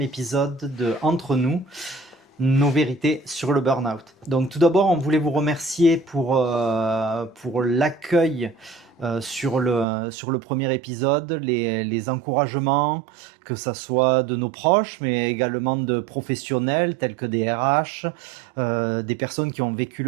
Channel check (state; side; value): drops out; left; at 9.9 s